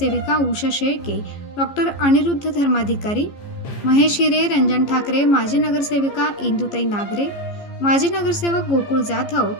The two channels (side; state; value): right; late; 14 ms